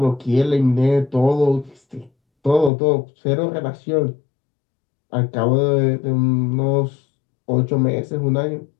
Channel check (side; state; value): right; drops out; at 2.7 s